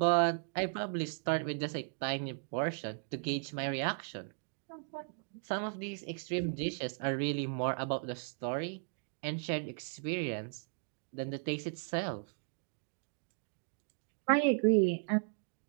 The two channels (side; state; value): left; silent; 54 dB below the other